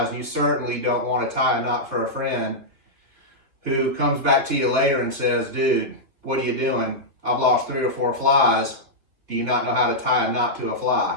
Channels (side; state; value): left; late; 3.3 ms